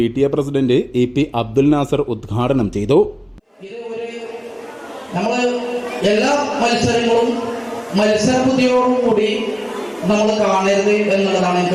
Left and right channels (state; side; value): identical; both; correlation 1.00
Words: president EP Abdul Nasar ഉദ്ഘാടനം ചെയ്തു. എല്ലാ മത്സരങ്ങളും മത്സരബുദ്ധിയോടുകൂടി നമ്മൾ കാണരുത് എന്നുള്ളതാണ്